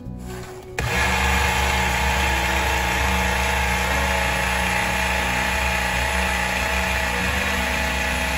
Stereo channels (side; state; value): both; identical; correlation 1.00